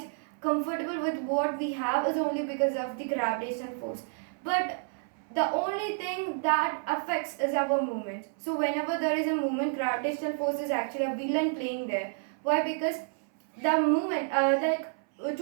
comfortable with what we have, is only because of the gravitational force. But the only thing that affects is our movement. So whenever there is a movement, gravitational force is actually a villain playing there. Why? Because the movement,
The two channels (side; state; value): left; silent; 58 dB below the other